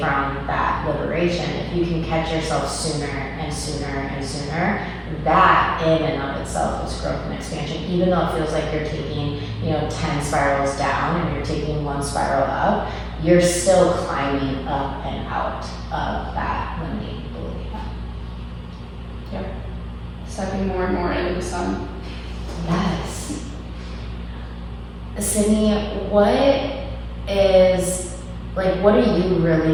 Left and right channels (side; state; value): both; identical; correlation 1.00